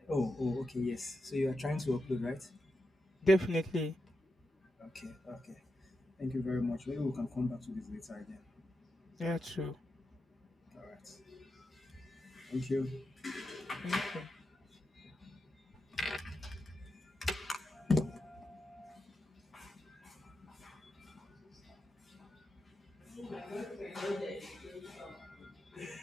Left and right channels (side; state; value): both; normal; correlation 0.88